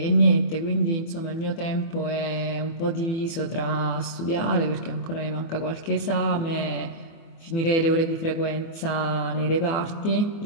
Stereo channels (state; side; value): late; right; 24 ms